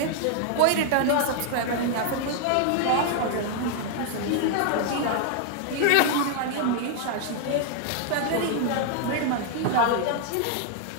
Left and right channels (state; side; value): different; both; correlation 0.00